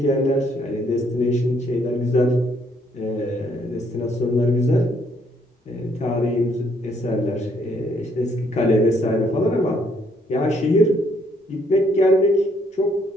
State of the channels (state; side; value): normal; both; correlation 0.69